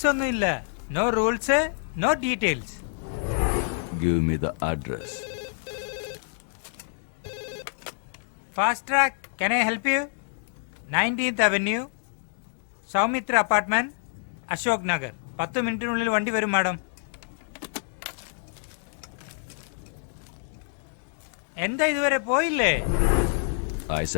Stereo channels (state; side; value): silent; right; digital silence